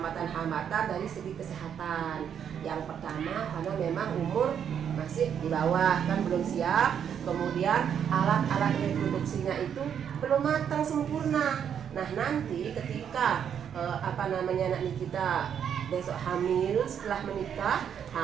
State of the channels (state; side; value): quieter; left; 8.4 dB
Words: dari segi kesehatan. Yang pertama karena memang umur masih di bawah, kan belum siap. Kemudian alat-alat reproduksinya itu belum matang sempurna. Nah nanti ketika anak Nikita besok hamil, setelah menikah